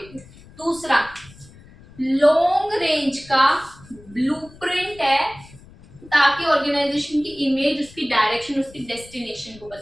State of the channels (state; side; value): noise; left; rumble, 22 dB below the sound